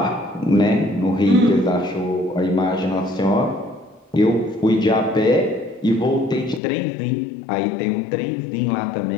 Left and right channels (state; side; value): drops out; right; at 6.6 s